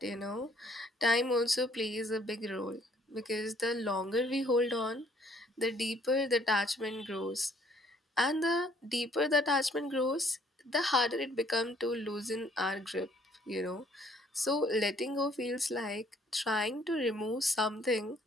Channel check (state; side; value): normal; both; correlation 0.62